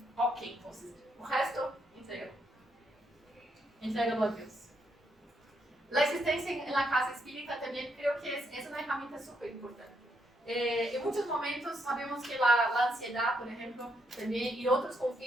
Ok, entonces, el resto, entrégalo. Entrégalo a Dios. La existencia en la casa espírita también creo que es una herramienta súper importante. En muchos momentos sabemos que la ansiedad, por ejemplo, también, y otros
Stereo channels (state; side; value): normal; both; correlation 0.77